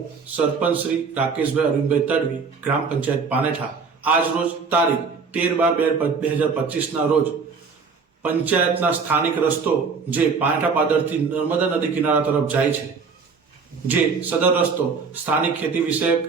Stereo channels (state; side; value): quieter; left; 5.2 dB